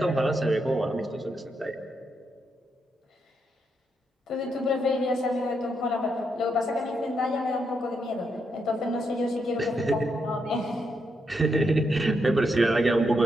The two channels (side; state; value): both; normal; correlation 0.80